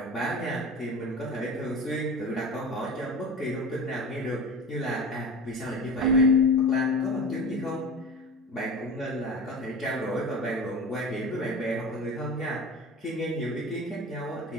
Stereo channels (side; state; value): both; normal; correlation 0.32